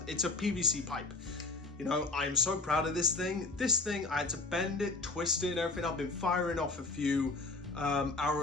It's a PVC pipe. You know, I am so proud of this thing. This thing, I had to bend it, twist it, and everything. I've been firing off a few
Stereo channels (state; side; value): quieter; right; 3.3 dB